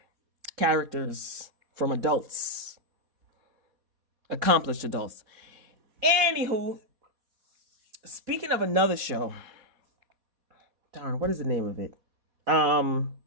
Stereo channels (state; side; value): late; left; 4.2 ms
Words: characters from adults, accomplished adults. Anywho, speaking of another show, darn, what is the name of it?